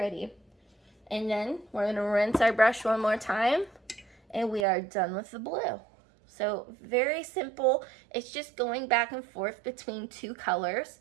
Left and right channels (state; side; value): drops out; left; at 4.7 s